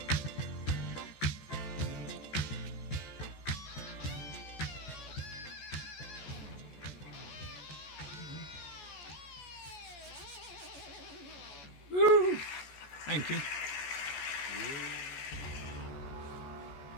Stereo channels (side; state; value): right; late; 14 ms